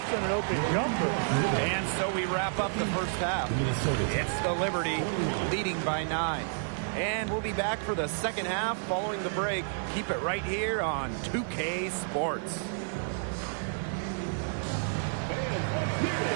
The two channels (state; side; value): silent; left; 58 dB below the other